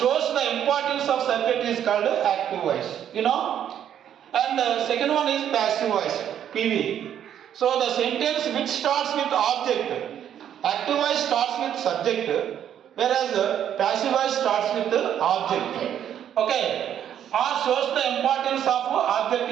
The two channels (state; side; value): quieter; left; 9.9 dB